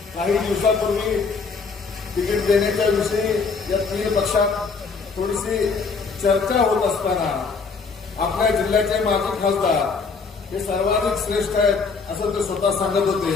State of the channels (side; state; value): right; quieter; 4.8 dB